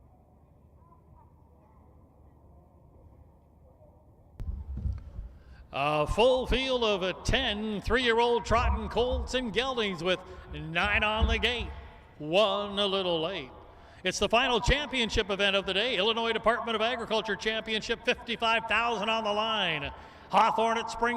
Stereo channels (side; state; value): both; identical; correlation 1.00